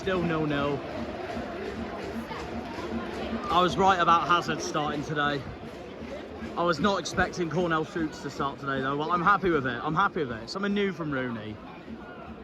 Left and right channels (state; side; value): identical; both; correlation 1.00